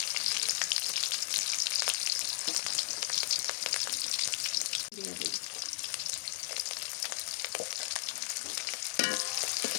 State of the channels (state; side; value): silent; right; digital silence